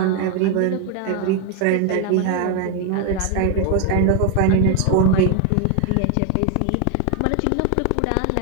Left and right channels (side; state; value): both; different; correlation 0.01